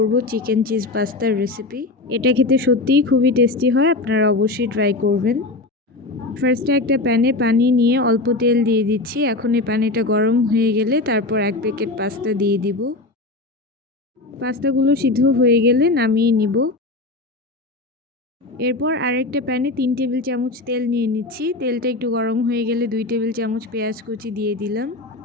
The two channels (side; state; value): right; quieter; 3.0 dB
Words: চিকেন চিজ পাস্তার রেসিপি। এটা খেতে সত্যিই খুবই টেস্টি হয়, আপনারা অবশ্যই ট্রাই করবেন। ফার্স্টে একটা প্যানে পানি নিয়ে অল্প তেল দিয়ে দিচ্ছি। এখন এই পানিটা গরম হয়ে গেলে তারপর 1 প্যাকেট পাস্তা দিয়ে দিব। পাস্তাগুলো সিদ্ধ হয়ে গেলে নামিয়ে নিব। এরপর আরেকটা প্যানে 3 টেবিল চামচ তেল নিয়ে নিচ্ছি। তেলটা একটু গরম হয়ে গেলে 2 টেবিল চামচ পেঁয়াজ কুচি দিয়ে দিলাম।